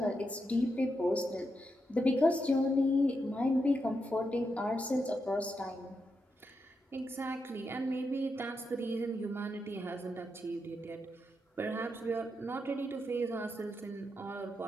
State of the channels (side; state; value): both; normal; correlation 0.84